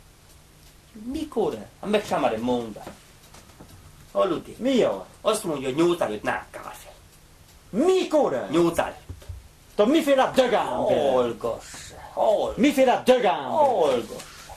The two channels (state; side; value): identical; both; correlation 1.00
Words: Mikor? Hát meg sem merem mondani. Hallod? Mi az? Azt mondja, hogy 8 előtt nem kell fel. Mikor? 8 előtt. Te miféle dögámber? Hallgass. Hallgass. Miféle dögámber? Hallgass.